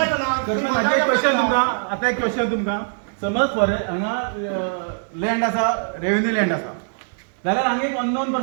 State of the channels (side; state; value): left; silent; digital silence